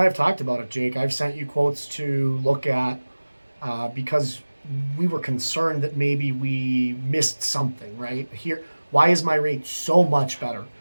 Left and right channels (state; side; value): inverted; both; correlation -1.00